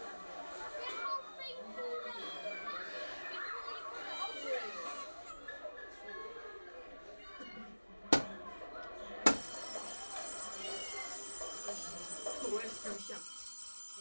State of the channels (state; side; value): inverted; both; correlation -1.00